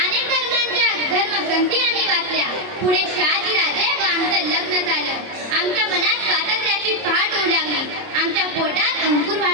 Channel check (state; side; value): late; left; 30 ms